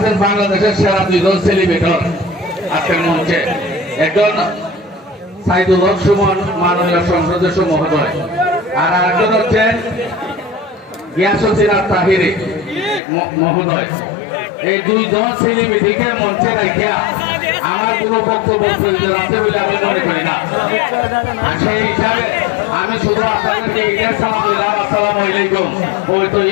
বাংলাদেশের সেরা দুইজন সেলিব্রেটর আজকের মঞ্চে, একজন সাইদুল হক সুমন মাননীয় সংসদ সদস্য মহোদয়, আর আরেকজন হচ্ছেন গিয়াসুদ্দিন তাহিরি মহোদয়। এই দুইজন সেলিব্রিটিকে মঞ্চে রাখিয়া আমার কোন বক্তব্য প্রয়োজন আছে বলে আমি মনে করি না। সেই হিসাবে আমি শুধু আপনাদেরকে ঈদের সালাম দিলাম, আসসালামু আলাইকুম, পবিত্র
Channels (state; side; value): drops out; right; at 13.0 s